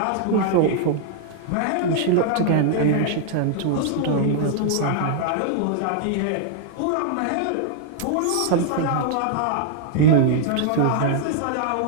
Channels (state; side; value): different; both; correlation -0.01